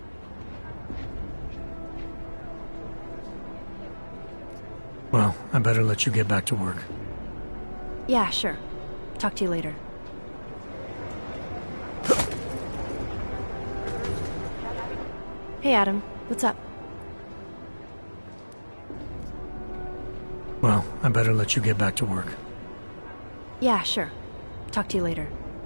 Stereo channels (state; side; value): inverted; both; correlation -1.00